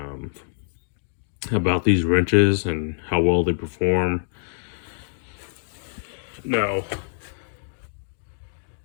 about these wrenches and how well they perform. Now,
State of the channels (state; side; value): silent; right; digital silence